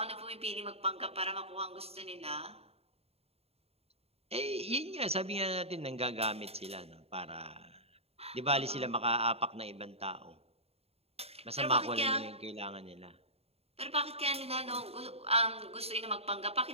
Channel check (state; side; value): late; left; 0.29 ms